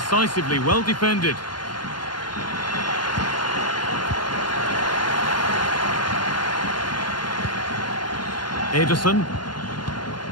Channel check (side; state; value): right; late; 0.71 ms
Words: well defended. Ederson.